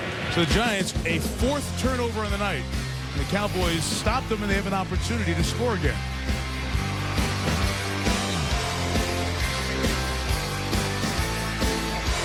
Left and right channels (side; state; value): both; identical; correlation 1.00